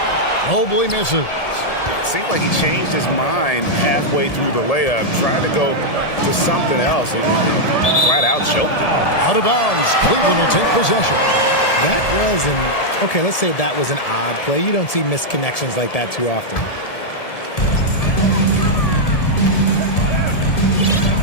Mobley misses. Seemed like he changed his mind halfway through the layup, tried to go to something else, and flat out choked him. Out of bounds. Cleveland will take possession. That was okay, let's say that was an odd play. You don't see missed connections like that too often.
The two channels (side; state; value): right; late; 1.7 ms